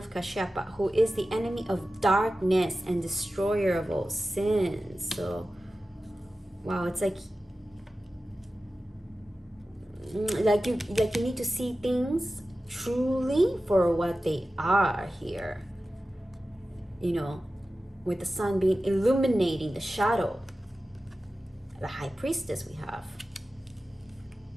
Kashyapa, who is the enemy of darkness and destroyer of all sins. So, wow, it's like you need to see things truly for what they are here. With the sun being illuminating the shadow, the high priestess we have.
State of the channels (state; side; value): normal; both; correlation 0.94